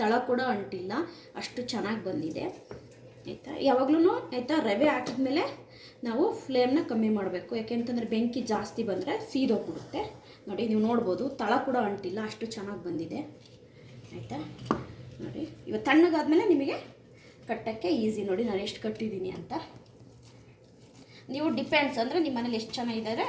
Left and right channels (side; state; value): both; identical; correlation 1.00